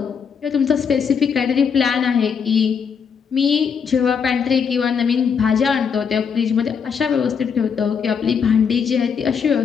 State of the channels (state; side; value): quieter; right; 6.6 dB